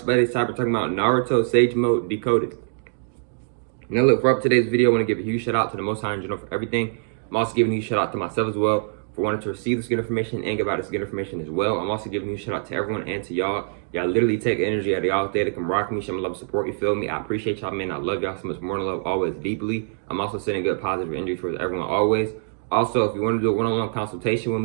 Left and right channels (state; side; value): silent; left; digital silence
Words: time talking about Naruto Sage Mode Decoded. Now look, for up today's video, I want to give a huge shout out to the Most High in general for everything. I'm also giving a huge shout out to myself as well for wanting to receive this good information and give out this good information as well. I'm also giving a huge shout out to everyone and to y'all. Y'all literally take energy out of y'all day to come rock me, show me love, support, you feel me? I appreciate y'all, man. I love y'all so much more than love, always deeply. I'm also sending good positive energy towards everyone always. Also, if you want to do a one-on-one consultation with